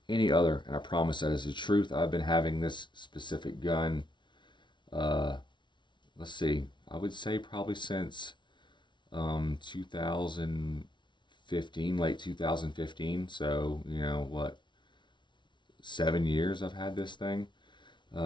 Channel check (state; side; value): late; right; 0.23 ms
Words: any other, and I promise that is the truth. I've been having this specific gun, uh, let's see, I would say probably since 2015, late 2015. So, what, 7 years I've had this thing.